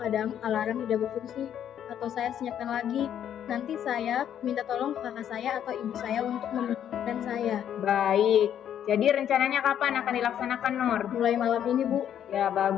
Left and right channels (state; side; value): quieter; right; 9.8 dB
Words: alarm tidak berfungsi atau saya senyapkan lagi. Nanti saya minta tolong ke kakak saya atau ibu saya untuk membangunkan saya. Baik, jadi rencananya kapan akan dilaksanakan, Nur? Mulai malam ini Bu. Ya,